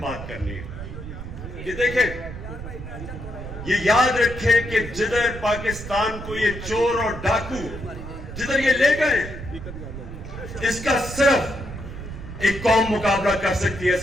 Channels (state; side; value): noise; right; rumble, 10 dB below the sound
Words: بات کرنی ہے کہ دیکھیں، یہ یاد رکھیں کہ جدھر پاکستان کو یہ چور اور ڈاکو جدھر یہ لے گئے، اس کا صرف ایک قوم مقابلہ کر سکتی ہے۔